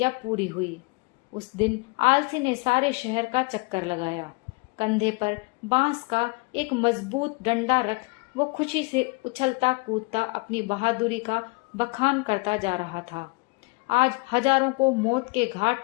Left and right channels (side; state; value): right; quieter; 28.4 dB